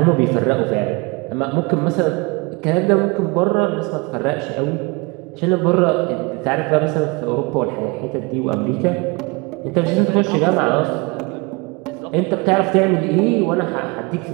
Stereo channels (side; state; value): left; quieter; 27.8 dB